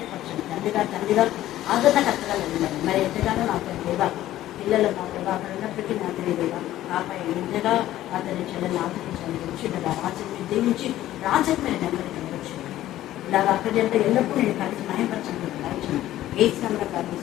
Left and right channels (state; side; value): quieter; right; 14.0 dB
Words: తండ్రిగా ఆదరణకర్తగా వెళ్ళండి. మరి ఎంతగానో నాకు దేవా పిల్లలు మా దేవా అక్కడ ఉన్నప్పటికీ నా తెలియదేవా నాపై ఎంతగా అతని చెల్లెని ఆదరించండి. వచ్చిండగా రాజ్యం దీవించి రాజ్యం మీద నెమ్మది కనవచ్చు. ఇలాగ అక్కడి అంటే ఎల్లప్పుడూ నేను కలిసి న్యాయపరచండి. ఏ స్థానంలో